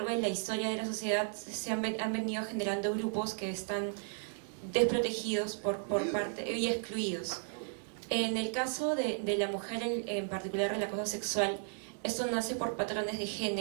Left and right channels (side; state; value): left; silent; 55 dB below the other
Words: de la historia de la sociedad han venido generando grupos que están desprotegidos por parte y excluidos. En el caso de la mujer, en particular el acoso sexual, esto nace por patrones de